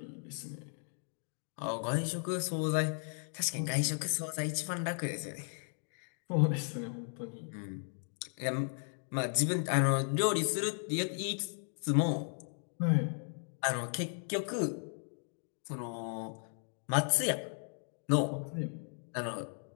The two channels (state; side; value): silent; right; 54 dB below the other